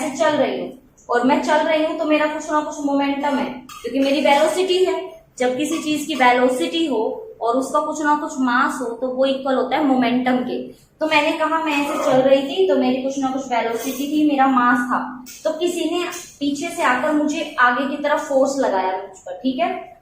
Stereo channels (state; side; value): identical; both; correlation 1.00